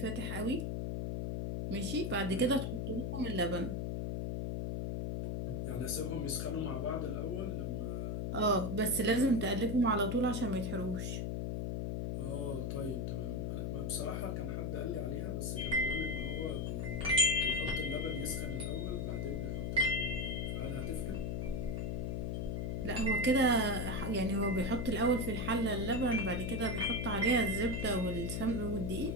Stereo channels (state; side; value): noise; left; hum, 1 dB below the sound